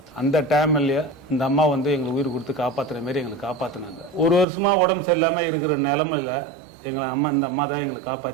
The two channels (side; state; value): left; drops out; at 4.5 s